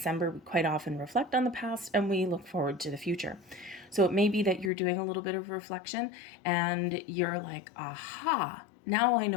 we quite often reflect on the past and we look forward to the future. So it may be that you're doing a little bit of reflection and you're like, aha, now I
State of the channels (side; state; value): right; drops out; at 4.7 s